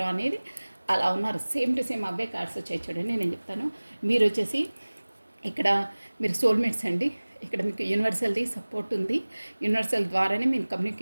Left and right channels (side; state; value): both; inverted; correlation -1.00